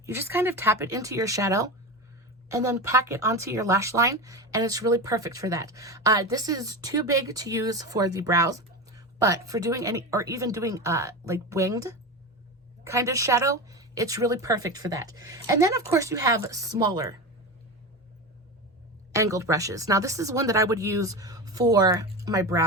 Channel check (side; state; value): both; normal; correlation 0.23